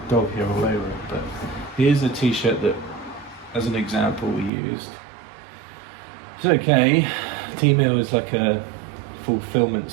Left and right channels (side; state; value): left; drops out; at 4.5 s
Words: dog here all over it, but here's a t-shirt that, as an example, we used. It's okay. T-Mill is like a fulfillment